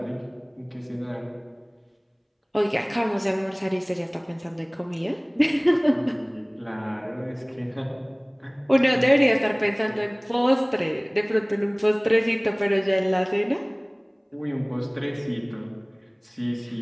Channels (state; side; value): identical; both; correlation 1.00